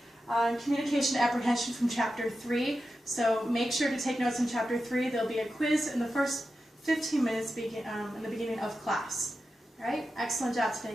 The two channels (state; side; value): normal; both; correlation 0.91